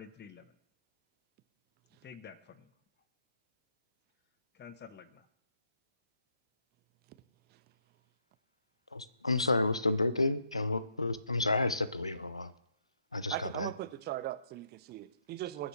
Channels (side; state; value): both; inverted; correlation -0.74